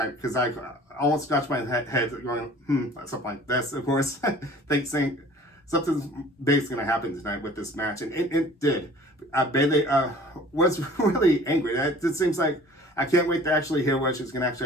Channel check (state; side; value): normal; both; correlation 0.48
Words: because I almost scratched my head going, something like this, of course. Saying, something's basically going to happen tonight with this match, and it did. Bayley was really angry. It seems like I can't wait to actually hear what she's going to